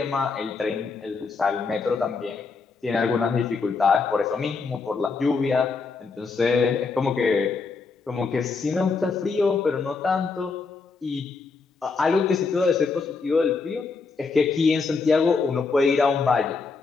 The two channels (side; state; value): right; quieter; 4.6 dB